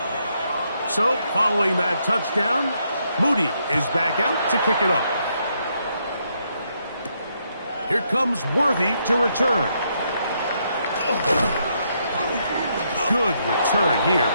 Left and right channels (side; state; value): both; inverted; correlation -0.76